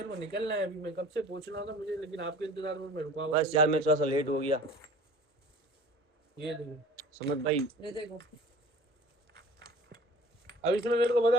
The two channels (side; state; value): both; normal; correlation 0.45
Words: को निकलना है अभी, मैं कब से पूछना था मुझे, लेकिन आपके इंतजार में मैं रुका हुआ बस था। यार मैं थोड़ा सा लेट हो गया ये देखो, समझ भाई। ये देखो, अब इसमें मेरे को